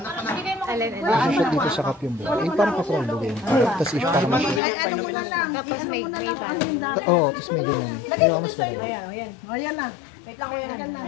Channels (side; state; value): right; drops out; at 4.6 s